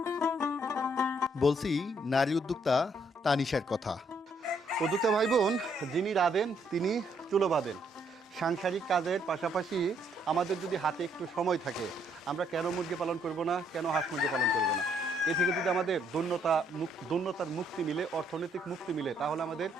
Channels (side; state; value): both; normal; correlation 0.70